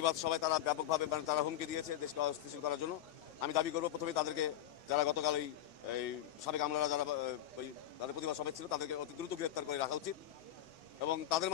সভায় তারা ব্যাপকভাবে তারা হুমকি দিয়েছে দেশটা অস্থিতিশীল করার জন্য। আমি দাবি করব প্রথমে তাদেরকে, যারা গতকাল এই সাবেক আমলারা যারা তাদের প্রতিবাদ সভায় ছিল, তাদেরকে অতি দ্রুত গ্রেপ্তার করে রাখা উচিত এবং তাদের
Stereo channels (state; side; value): quieter; right; 12.1 dB